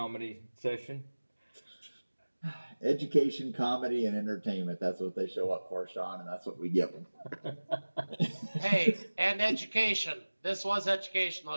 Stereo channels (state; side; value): inverted; both; correlation -1.00